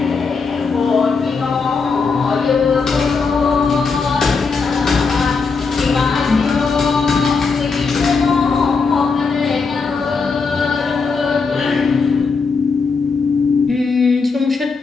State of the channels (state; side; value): quieter; right; 4.8 dB